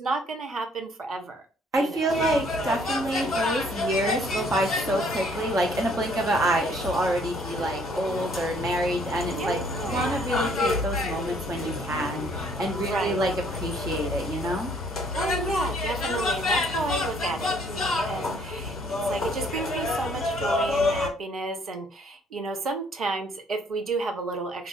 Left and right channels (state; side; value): normal; both; correlation 0.62